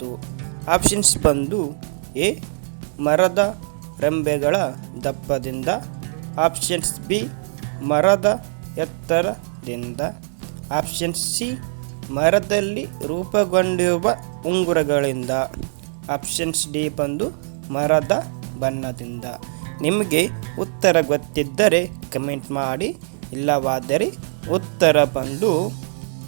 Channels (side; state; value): left; silent; digital silence